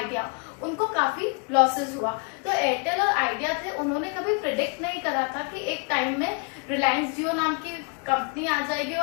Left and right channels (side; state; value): right; quieter; 36.0 dB